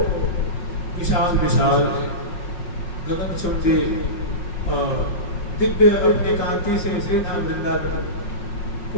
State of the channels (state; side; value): late; right; 5.5 ms